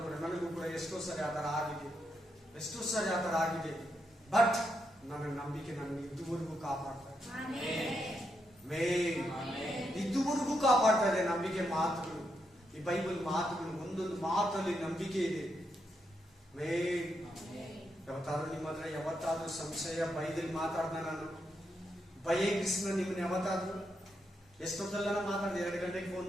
ಕೂಡ ನನಗೂ ಕೂಡ ಎಷ್ಟೋ ಸರಿ ಆ ತರ ಆಗಿದೆ. ಬಟ್ ನನ್ನ ನಂಬಿಕೆ ನನ್ನ ಇದುವರೆಗೂ ಕಾಪಾಡ್ತಾ ಇದುವರೆಗೂ ಕಾಪಾಡ್ತಾ ಇದೆ. ನಂಬಿಕೆ ಮಾತುಗಳು, ಈ ಬೈಬಲ್ ಮಾತುಗಳು, ಒಂದೊಂದು ಮಾತಲ್ಲಿ ನಂಬಿಕೆ ಇದೆ. ಯಾವತ್ತಾದ್ರೂ ನಿಮ್ಮ ಹತ್ರ ಯಾವತ್ತಾದ್ರೂ ಸಂಶಯ ಬೈದಲ್ಲಿ ಮಾತಾಡ್ದ ನಾನು ಭಯ ಕೃಷ್ಣ ನಿಮ್ಮನ್ನ ಯಾವತ್ತಾದ್ರೂ ಎಷ್ಟೊತ್ತಲ್ಲ ಮಾತಾಡ್ದೆ? 2 ಗಂಟೆಗೆ ಫೋನ್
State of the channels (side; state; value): both; normal; correlation 0.81